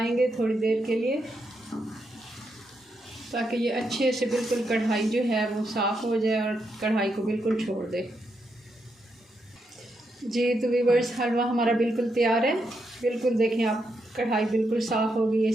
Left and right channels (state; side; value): normal; both; correlation 0.82